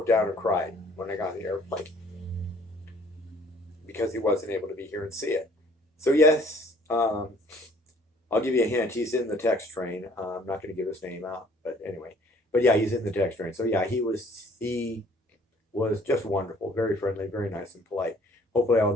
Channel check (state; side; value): normal; both; correlation 0.57